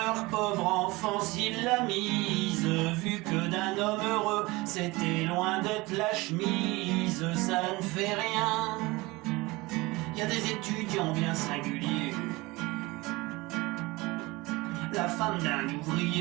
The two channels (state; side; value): quieter; left; 22.4 dB